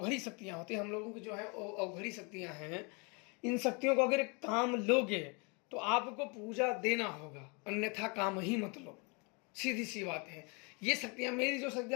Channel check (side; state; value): right; quieter; 31.9 dB